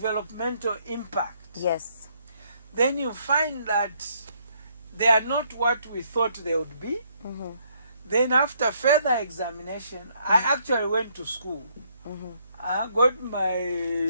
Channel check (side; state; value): both; inverted; correlation -0.69